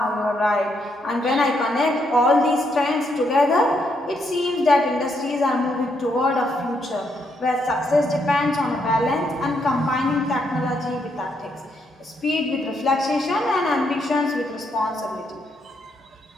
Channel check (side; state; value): both; normal; correlation 0.76